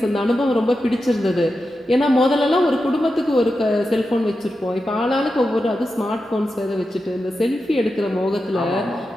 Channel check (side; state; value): both; normal; correlation 0.90